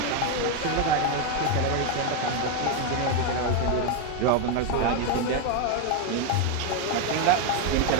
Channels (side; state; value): both; different; correlation 0.02